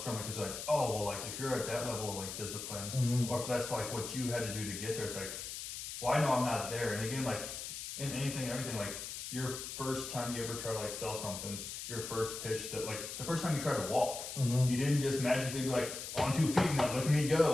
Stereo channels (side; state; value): left; noise; hiss, 7 dB below the sound